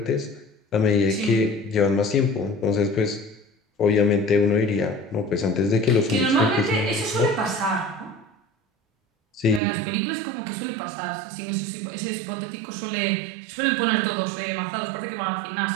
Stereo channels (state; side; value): drops out; left; at 9.6 s